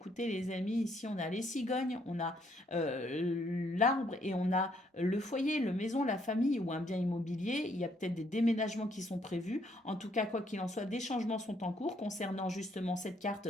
les amis, ici on a les cigognes, on a l'arbre et on a le foyer, le maison, la famille ou un bien immobilier. Il y a peut-être des déménagements qui sont prévus. En tout cas, quoi qu'il en soit, des changements sont en cours concernant justement cette carte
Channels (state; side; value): normal; both; correlation 0.69